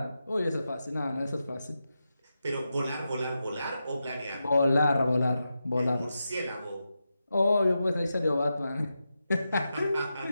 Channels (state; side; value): inverted; both; correlation -0.89